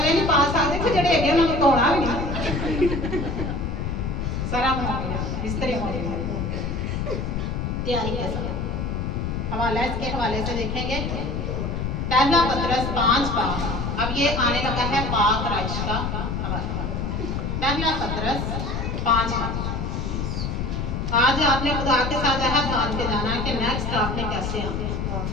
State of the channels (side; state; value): left; noise; rumble, 2 dB below the sound